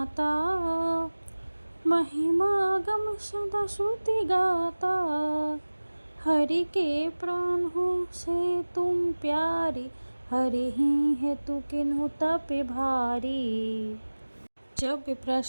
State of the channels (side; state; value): both; inverted; correlation -1.00